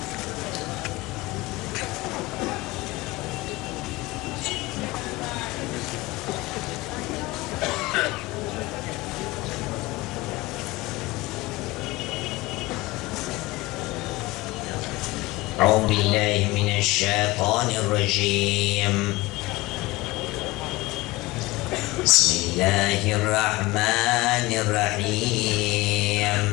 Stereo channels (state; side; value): quieter; right; 20.4 dB